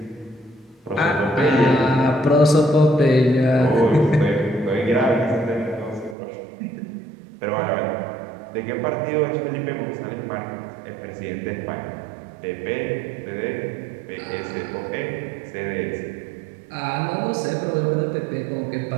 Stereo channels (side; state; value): left; drops out; at 6.2 s